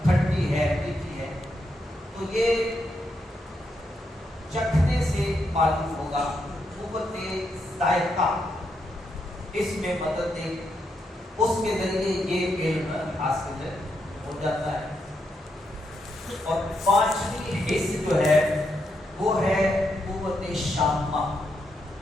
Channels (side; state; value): both; normal; correlation 0.81